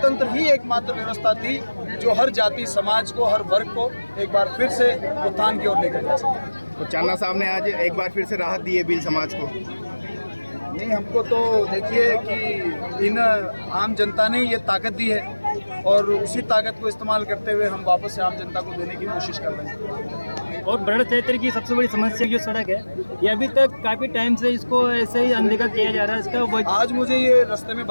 ही एकमात्र व्यवस्था थी जो हर जाति समाज को, हर वर्ग को एक बार फिर से उत्थान की ओर लेकर जा सके। तो चांदना साहब ने आज एक बार फिर से राहत दी है भील समाज को। नहीं, हमको तो देखिए कि इन आम जनता ने ये ताकत दी है और उसी ताकत को इस्तेमाल करते हुए हम वापस से आम जनता को देने की कोशिश कर रहे हैं। और बड़ा क्षेत्र की सबसे बड़ी समस्या जो सड़क है, ये अभी तक काफ़ी टाइम से इसको ऐसे ही अनदेखा किया जा रहा है। इसका आज मुझे ये रास्ते में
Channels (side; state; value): both; inverted; correlation -1.00